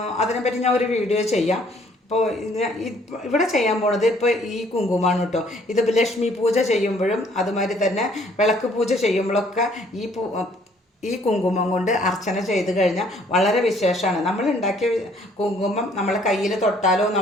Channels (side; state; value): both; normal; correlation 0.61